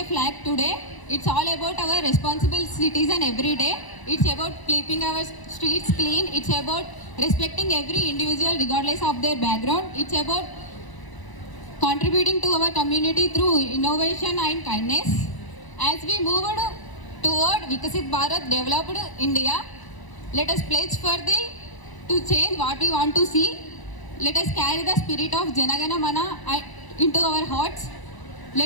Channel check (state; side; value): late; right; 1.0 ms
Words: flag today. It's all about our responsible citizen every day. It's about keeping our streets clean. It's about respecting every individual regardless of their background. It's about contributing to our community through innovation and kindness. As we move toward Vikasit Bharat, developed India, let us pledge to change what we want to see. Let us carry the spirit of Jana Gana Mana into our hearts.